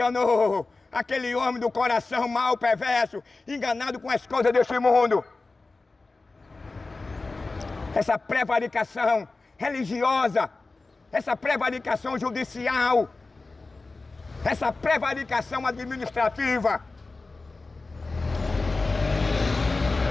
aquele homem do coração mau, perverso, enganado com as coisas deste mundo. Essa prevaricação religiosa, essa prevaricação judicial, essa prevaricação administrativa.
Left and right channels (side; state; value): right; quieter; 3.6 dB